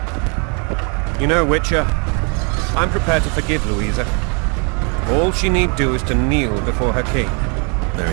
You know, Witcher, I'm prepared to forgive Louisa. All she need do is to kneel before her king.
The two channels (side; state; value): left; quieter; 35.5 dB